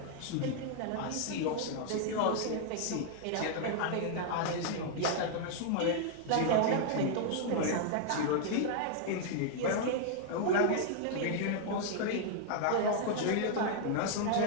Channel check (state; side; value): different; both; correlation -0.01